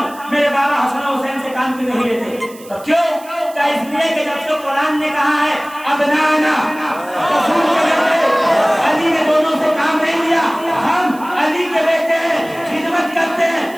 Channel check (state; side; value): noise; right; hiss, 21 dB below the sound